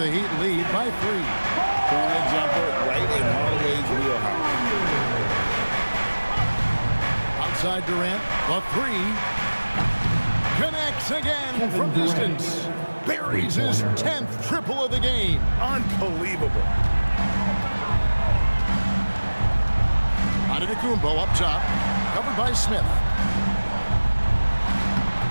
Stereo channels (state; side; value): inverted; both; correlation -1.00